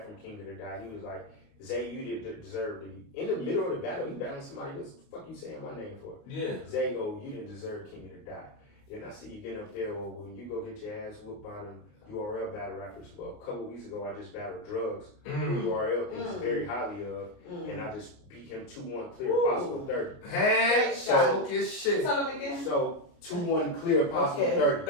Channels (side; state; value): right; late; 28 ms